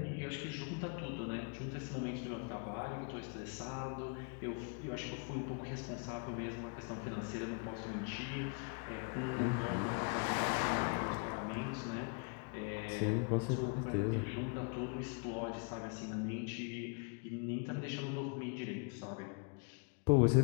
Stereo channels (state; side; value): quieter; right; 36.0 dB